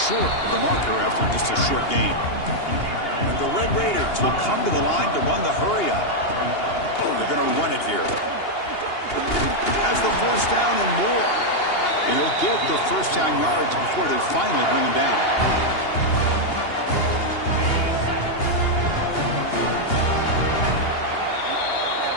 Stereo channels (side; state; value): right; late; 2.8 ms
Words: of the marker after just a short game. And the Red Raiders will come to the line to run the hurry up. They're going to run it here. Has the 1st down and more. And he'll get the 1st down yards before they finally bring him down.